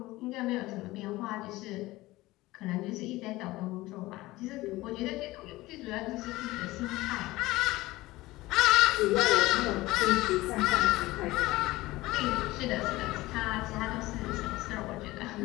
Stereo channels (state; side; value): quieter; right; 18.9 dB